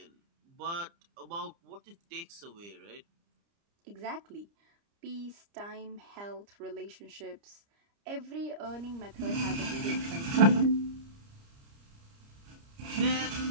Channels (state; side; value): late; left; 30 ms